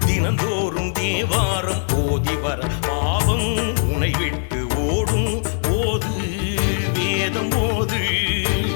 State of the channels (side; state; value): right; silent; 65 dB below the other